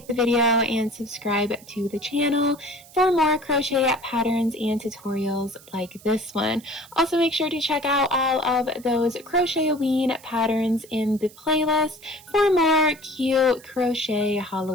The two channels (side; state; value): right; noise; hiss, 22 dB below the sound